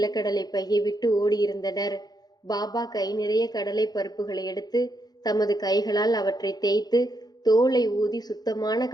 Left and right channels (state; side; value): late; right; 0.19 ms